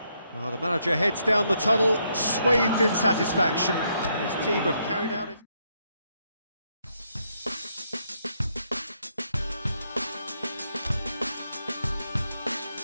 Well, the manager heads down the tunnel, swathed in satisfaction. His team have carried out it.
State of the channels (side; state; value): both; inverted; correlation -0.76